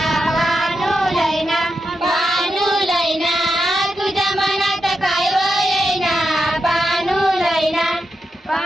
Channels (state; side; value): normal; both; correlation 0.87